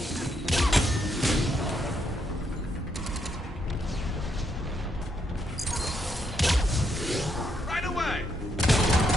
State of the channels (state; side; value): normal; both; correlation 0.77